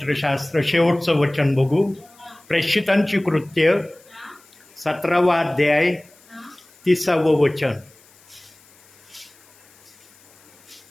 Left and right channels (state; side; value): noise; left; hiss, 28 dB below the sound